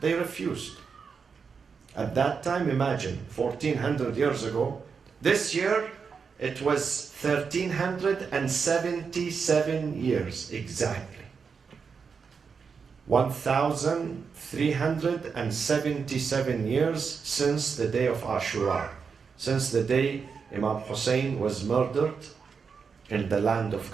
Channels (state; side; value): quieter; left; 5.7 dB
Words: refused. At that time, imagine, 1400 years ago, this year it was 1377 years exactly. 1377 years since the day of Ashura, since the day Imam Hussein was murdered in the land of